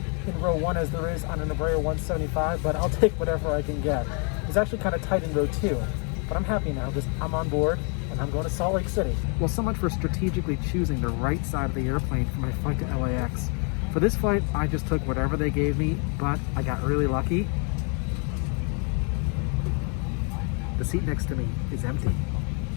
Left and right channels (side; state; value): right; quieter; 37.3 dB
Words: in row 1 as there is on an Embraer 175, but I'll take whatever I can get. It's actually kind of tight in row 2, but I'm happy now because I'm on board and I'm going to Salt Lake City. Well, so much for strategically choosing the right side of the airplane for my flight to LAX. For this flight, I just took whatever they gave me, but I got really lucky. The seat next to me is empty.